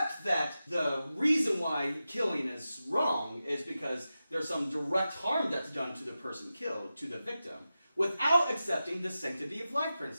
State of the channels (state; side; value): inverted; both; correlation -0.93